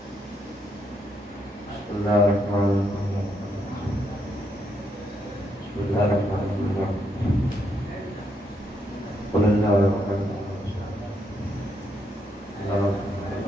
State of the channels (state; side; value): normal; both; correlation 0.77